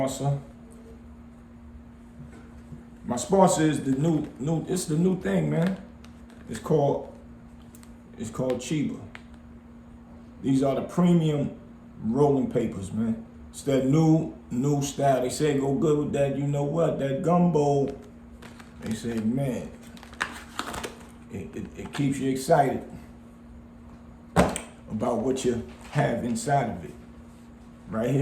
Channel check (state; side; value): identical; both; correlation 1.00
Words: My sponsor is the new thing, man. It's called Chiba. These are the premium rolling papers, man. It's that new style. They say go good with that, you know what, that gumbo. They say, man, it keeps you excited about what you have inside of it. Right